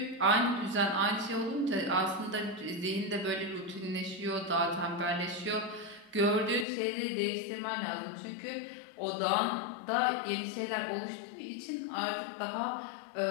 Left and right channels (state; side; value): drops out; right; at 6.7 s